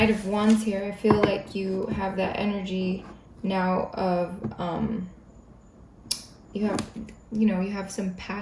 of Wands here, I feel like you have that energy now of you have some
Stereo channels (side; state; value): both; identical; correlation 1.00